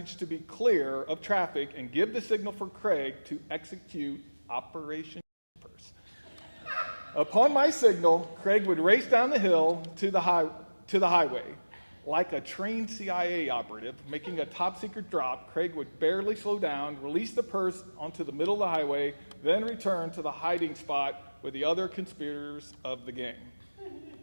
to be clear of traffic and give the signal for Craig to execute Operation Purse. Upon my signal, Craig would race down the hill to the highway. Like a trained CIA operative making a top-secret drop, Craig would barely slow down, release the purse onto the middle of the highway, then return to the hiding spot with the other conspirators of the game.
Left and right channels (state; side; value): inverted; both; correlation -1.00